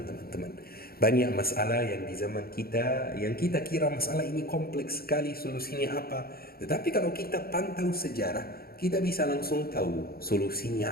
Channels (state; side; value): late; right; 0.44 ms